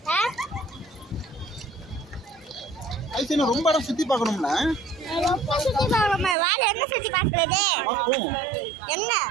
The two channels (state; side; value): drops out; left; at 6.4 s